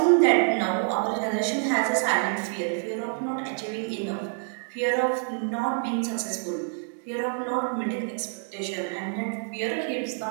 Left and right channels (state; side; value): silent; left; 60 dB below the other